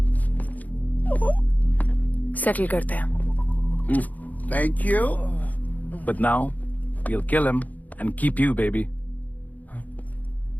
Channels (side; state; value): right; late; 0.078 ms